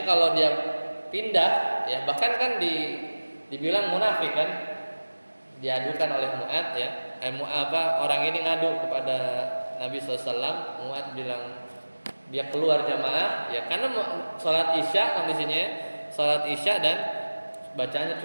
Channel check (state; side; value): inverted; both; correlation -1.00